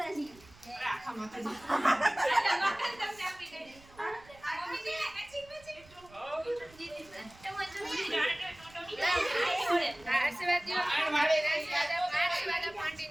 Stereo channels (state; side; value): noise; right; rumble, 24 dB below the sound